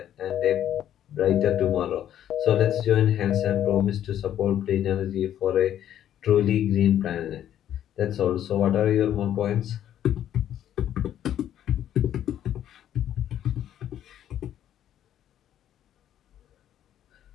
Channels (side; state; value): right; quieter; 11.0 dB